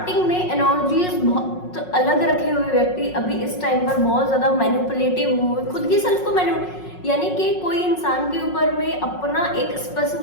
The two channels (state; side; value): late; right; 5.5 ms